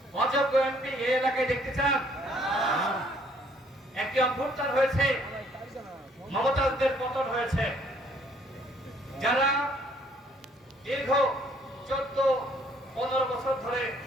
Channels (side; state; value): both; normal; correlation 0.63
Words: অযোগ্য এমপি এই এলাকায় দেখতে চান? একটি অভ্যুত্থান হয়েছে, মমতাজদের পতন হয়েছে। যারা দীর্ঘ 14-15 বছর ধরে